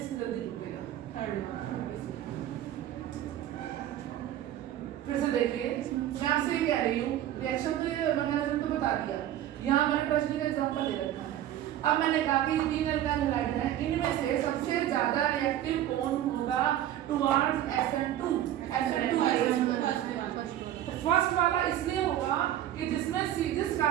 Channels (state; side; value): quieter; left; 12.2 dB